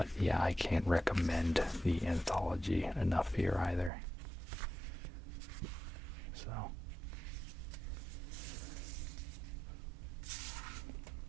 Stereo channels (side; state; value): left; drops out; at 3.9 s